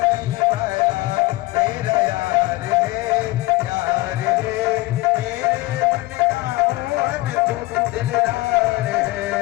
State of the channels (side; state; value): right; quieter; 20.2 dB